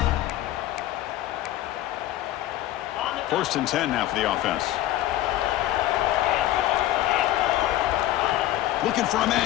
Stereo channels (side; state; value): right; quieter; 14.4 dB